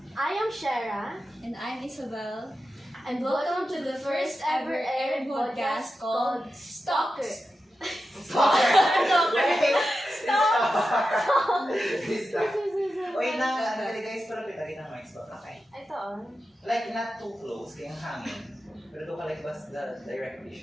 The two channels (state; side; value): normal; both; correlation 0.91